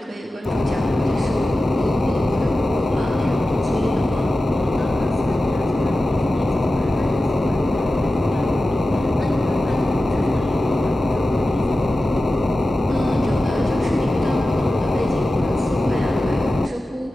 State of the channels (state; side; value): normal; both; correlation 0.94